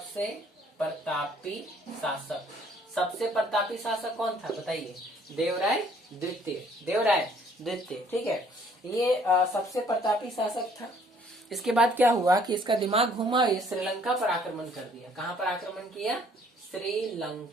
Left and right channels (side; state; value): both; normal; correlation 0.60